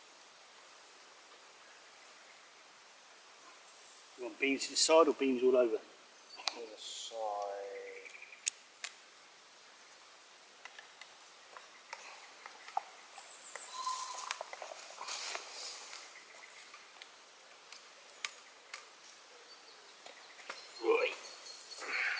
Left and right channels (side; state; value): both; identical; correlation 1.00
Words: You want beans to the side or beans all over? To the side. Right.